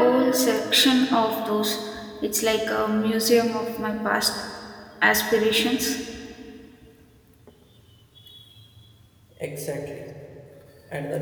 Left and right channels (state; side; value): identical; both; correlation 1.00